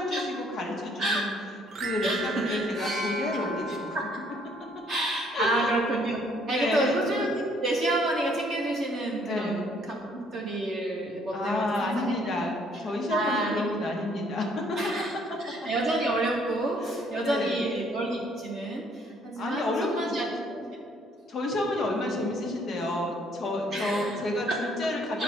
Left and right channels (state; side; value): normal; both; correlation 0.64